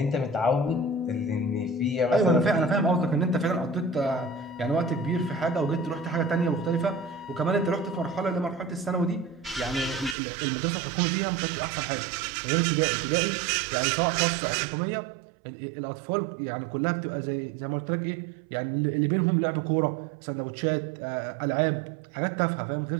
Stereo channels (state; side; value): drops out; left; at 10.2 s